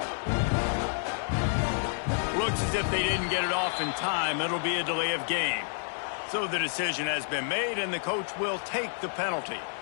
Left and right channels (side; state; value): right; silent; 58 dB below the other